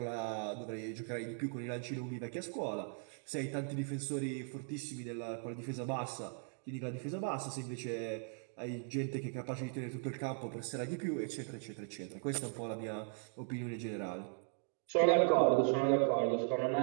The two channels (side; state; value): left; silent; 52 dB below the other